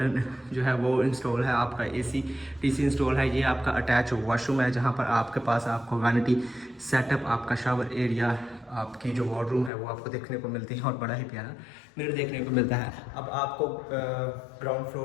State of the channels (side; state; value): right; drops out; at 9.7 s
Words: जो है वो इंस्टॉल है, आपका AC/DC इंस्टॉल है। ये आपका अटैच वॉशरूम है जहाँ पर आपके पास आपको वैनिटी सेटअप, आपका शावर एरिया, आपकी जो वार्डरूम है वो आपको देखने को मिलती है और बड़ा ही प्यारा मिरर देखने को मिलता है। अब आपको ग्राउंड